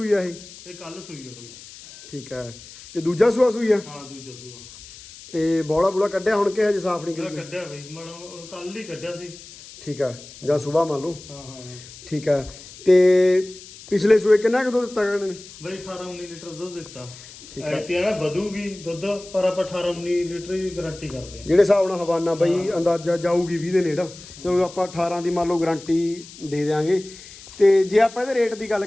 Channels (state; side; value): noise; left; hiss, 18 dB below the sound